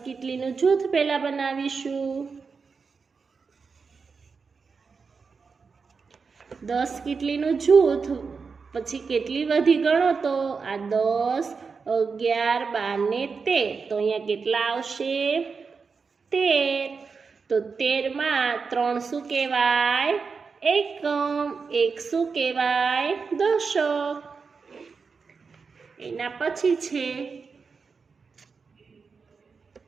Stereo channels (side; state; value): left; quieter; 5.1 dB